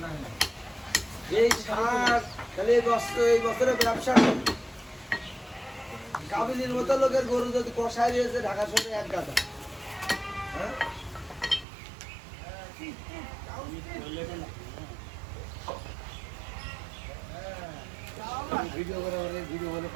নেই এই সার তাহলে এই বছরে ব্যবসা কাবিলির মতো লোকের গরু যদি কষায় দিয়েছে ঢাকা শহরে এক গাদা হ্যাঁ ভিডিও করে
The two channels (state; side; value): drops out; left; at 11.7 s